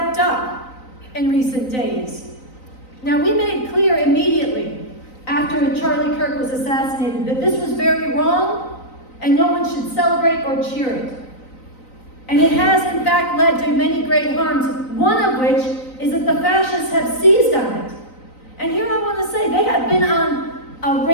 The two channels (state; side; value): late; right; 3.9 ms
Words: up in recent days. Now, we made clear immediately after Charlie Kirk was assassinated that this was very wrong and no one should celebrate or cheer it. And it has, in fact, led to many great harms, one of which is that the fascists have seized on it. And here I want to say, they have been on a